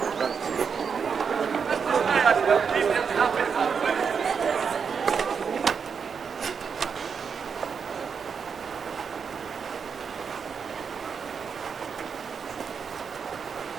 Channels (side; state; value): left; quieter; 6.2 dB